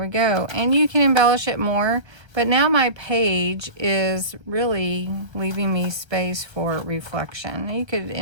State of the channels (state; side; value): late; left; 1.3 ms